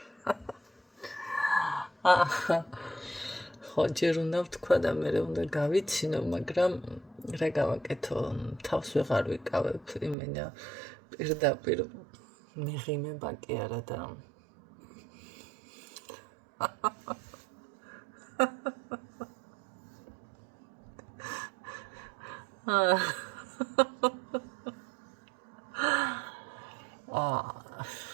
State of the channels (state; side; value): drops out; left; at 10.2 s